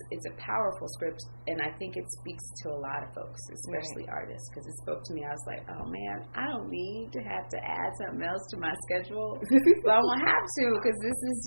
a powerful script, and I think it speaks to a lot of folks, especially artists, because it spoke to me. I was like, oh man, I don't need to have to add something else to my schedule, but I won't have to, because this is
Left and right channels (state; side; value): inverted; both; correlation -1.00